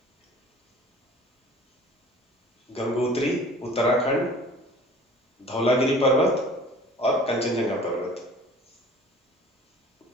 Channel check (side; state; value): both; normal; correlation 0.47